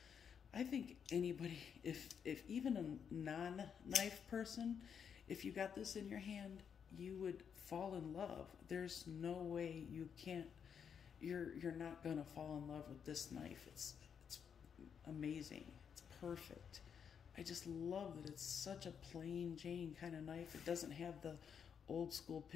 I think anybody, if even a non-knife person, if you got this in your hand, you would fall in love. There's no way you can't. You're not gonna fall in love with this knife. It's amazing. It's perfect. I just love that it's such a plain Jane kind of knife. It doesn't have the old school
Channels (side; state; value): right; quieter; 7.3 dB